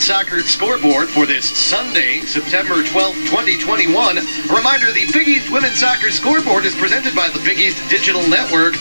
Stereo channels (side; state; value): both; inverted; correlation -0.99